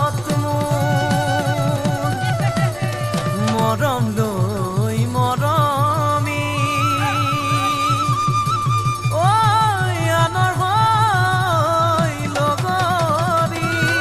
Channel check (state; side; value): noise; right; rumble, 21 dB below the sound